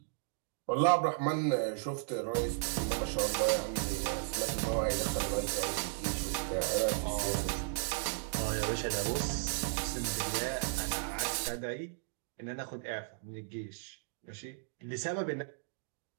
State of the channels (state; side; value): silent; left; digital silence